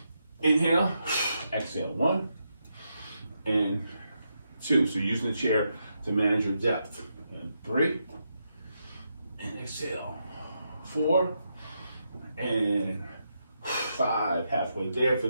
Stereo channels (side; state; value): both; inverted; correlation -0.83